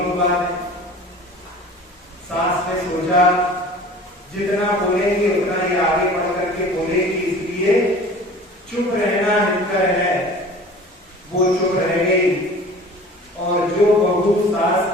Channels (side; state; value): both; normal; correlation 0.43